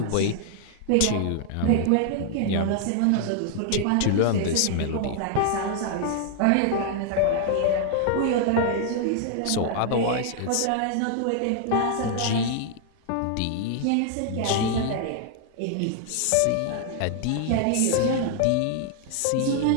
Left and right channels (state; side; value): different; both; correlation 0.00